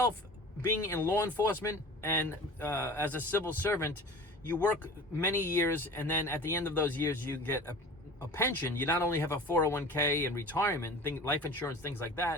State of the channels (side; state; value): both; normal; correlation 0.39